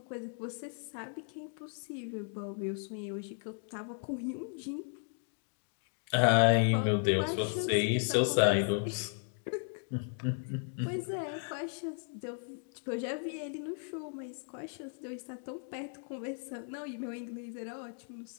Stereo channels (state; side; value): silent; right; 54 dB below the other